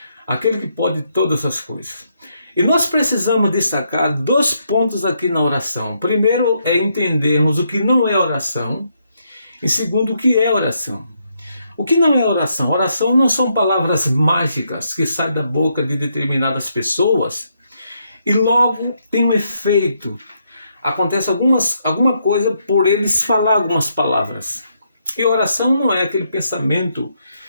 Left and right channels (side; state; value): both; inverted; correlation -0.77